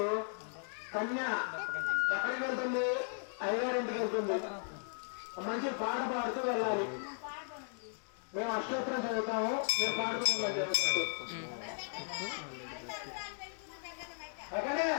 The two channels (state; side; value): silent; right; digital silence